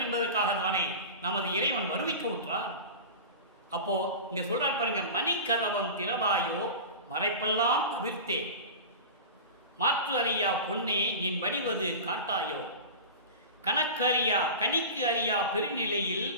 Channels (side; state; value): both; inverted; correlation -0.30